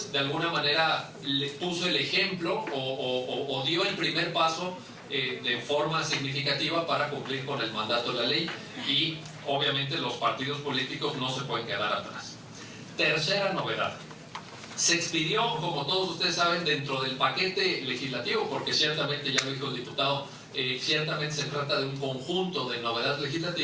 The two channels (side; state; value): both; identical; correlation 1.00